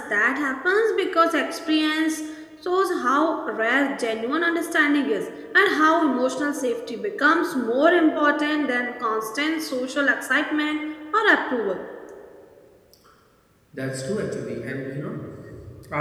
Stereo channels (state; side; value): identical; both; correlation 1.00